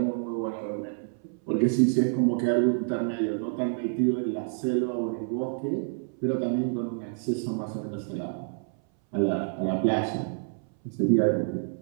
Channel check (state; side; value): silent; left; 59 dB below the other